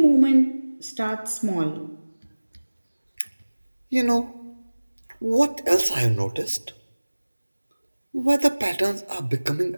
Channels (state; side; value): inverted; both; correlation -1.00